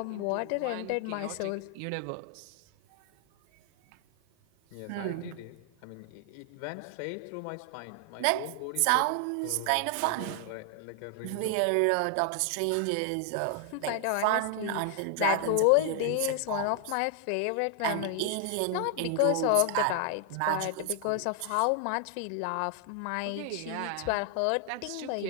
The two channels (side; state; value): both; different; correlation 0.00